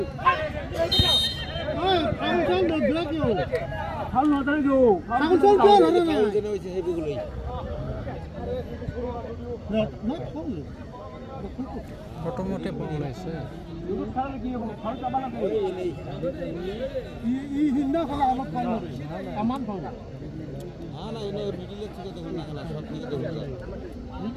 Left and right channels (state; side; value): identical; both; correlation 1.00